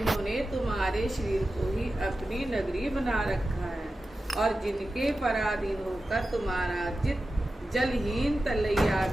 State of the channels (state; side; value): normal; both; correlation 0.93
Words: तुम्हारे शरीर को ही अपनी नगरी बना रखा है और जिनके पराधीन होकर तुम्हारा चित्त जलहीन तलैया